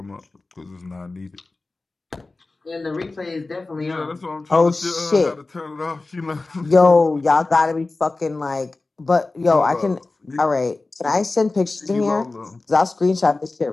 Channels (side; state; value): right; quieter; 3.4 dB